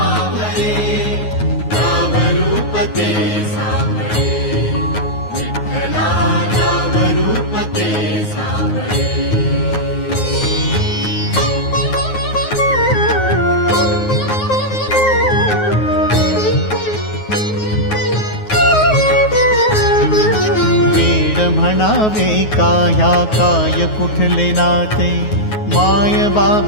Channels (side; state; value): right; late; 9.4 ms